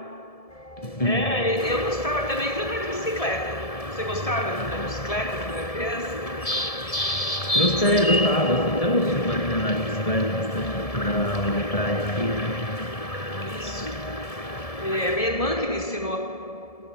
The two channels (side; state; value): right; late; 1.7 ms